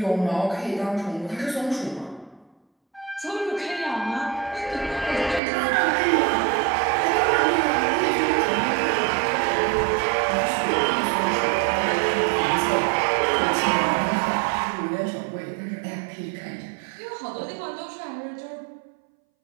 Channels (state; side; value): drops out; left; at 5.4 s